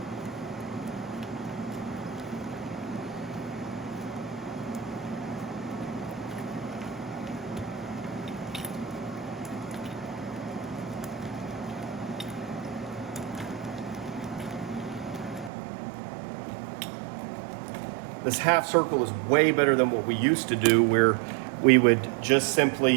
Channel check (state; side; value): drops out; left; at 15.5 s